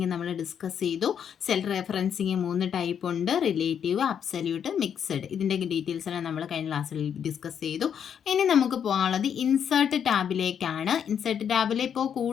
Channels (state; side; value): quieter; right; 8.2 dB